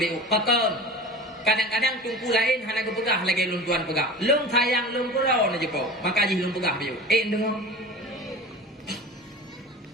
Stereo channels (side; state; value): both; normal; correlation 0.35